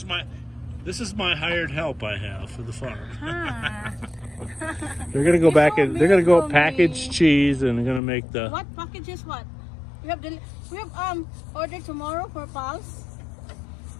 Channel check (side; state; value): right; drops out; at 8.0 s